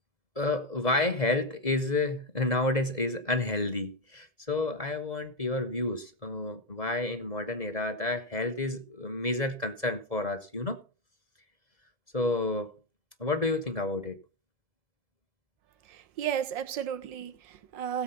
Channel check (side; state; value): left; late; 1.7 ms